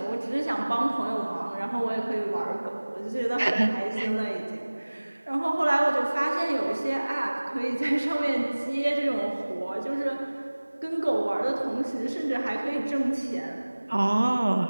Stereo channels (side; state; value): both; inverted; correlation -1.00